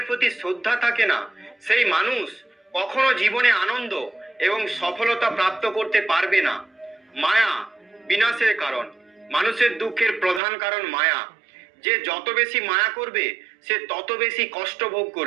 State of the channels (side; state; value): left; drops out; at 10.4 s